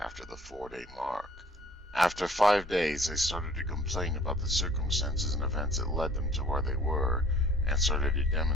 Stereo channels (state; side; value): normal; both; correlation 0.54